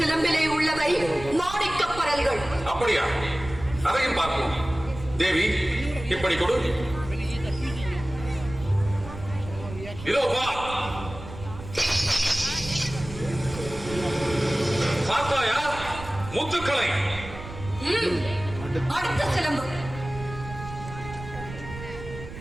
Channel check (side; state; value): right; noise; rumble, 12 dB below the sound